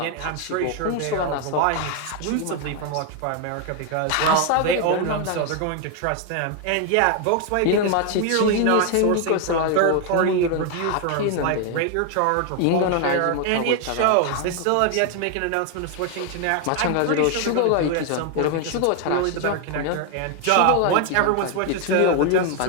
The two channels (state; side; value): different; both; correlation 0.01